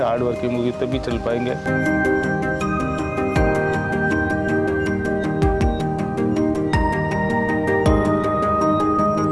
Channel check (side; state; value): both; identical; correlation 1.00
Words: हार्ड वर्किंग होगी तभी चल पाएंगे।